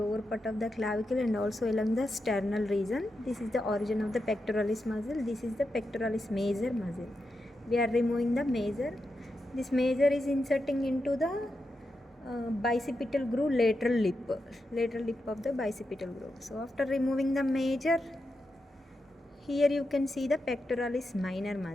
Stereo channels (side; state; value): both; normal; correlation 0.87